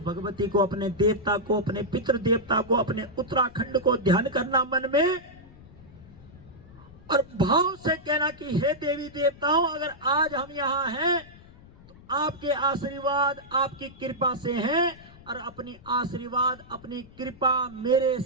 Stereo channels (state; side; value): noise; left; rumble, 22 dB below the sound